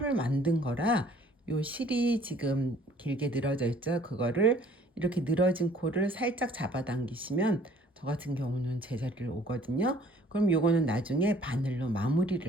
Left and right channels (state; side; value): normal; both; correlation 0.56